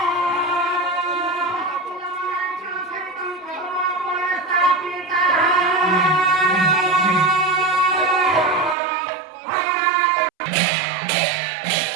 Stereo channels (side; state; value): left; drops out; at 8.8 s